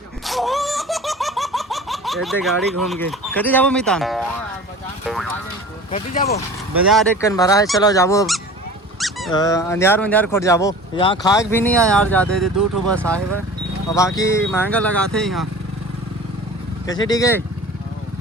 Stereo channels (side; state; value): both; normal; correlation 0.39